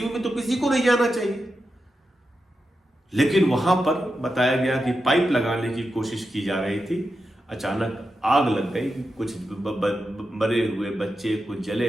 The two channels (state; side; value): normal; both; correlation 0.89